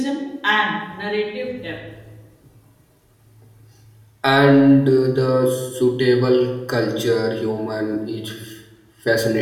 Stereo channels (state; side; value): identical; both; correlation 1.00